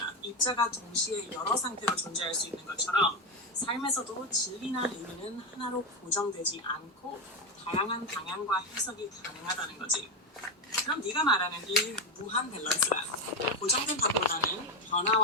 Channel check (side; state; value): both; normal; correlation 0.11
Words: 입자가 동시에 여러 상태로 존재할 수 있는 것처럼 삶에서도 진리나 의미는 하나로 고정되지 않고 다양한 방향과 해석이 가능하다는 거지. 그럼 네가 말하는 이 무한 밸런스란 고정된 답보다는